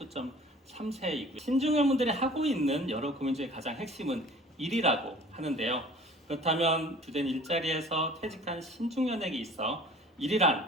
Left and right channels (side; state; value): both; normal; correlation 0.48